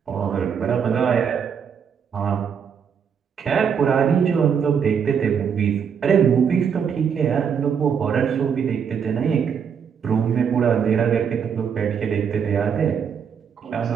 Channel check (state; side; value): quieter; left; 7.2 dB